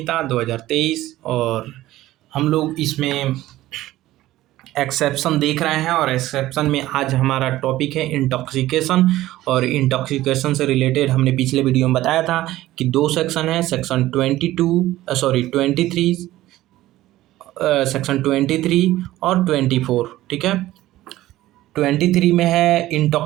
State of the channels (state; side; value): quieter; left; 15.7 dB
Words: 2023 और हम लोग इसमें एक्सेप्शन देख रहे हैं। और एक्सेप्शन में आज हमारा टॉपिक है इंटॉक्सिकेशन। और इंटॉक्सिकेशन से रिलेटेड हमने पिछले वीडियो में बताया था कि दो सेक्शन है, सेक्शन 23 सेक्शन 23 और 24। ठीक है, 23 में है